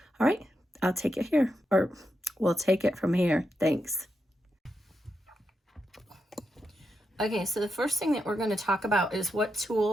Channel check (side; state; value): both; normal; correlation 0.85